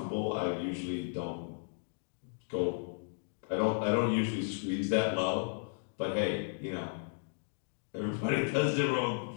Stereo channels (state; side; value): silent; right; digital silence